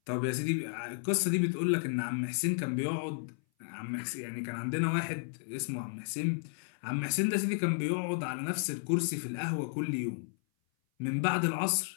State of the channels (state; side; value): silent; right; 56 dB below the other